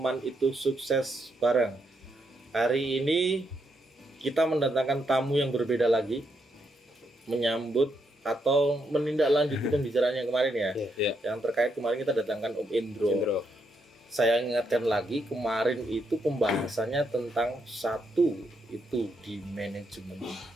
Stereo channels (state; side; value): normal; both; correlation 0.78